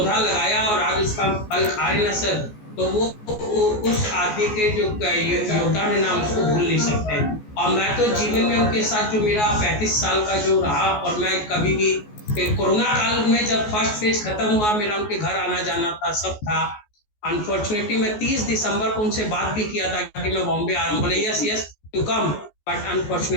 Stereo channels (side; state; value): right; late; 14 ms